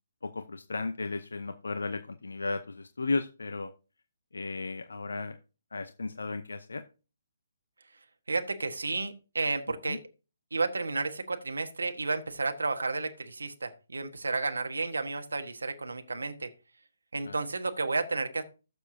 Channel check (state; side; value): inverted; both; correlation -0.92